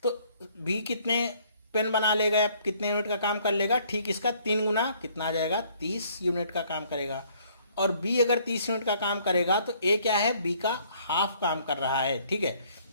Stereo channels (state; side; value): inverted; both; correlation -0.62